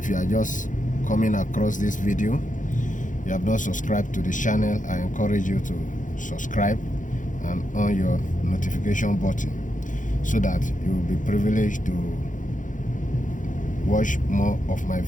you are just coming across this video, you have not subscribed to the channel, I encourage you to subscribe and on your notification button so that you will be privileged to watch more of my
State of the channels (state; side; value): late; right; 0.37 ms